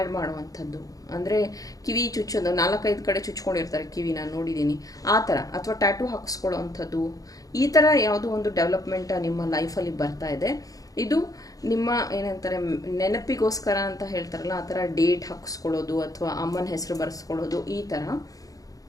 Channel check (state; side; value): late; right; 0.17 ms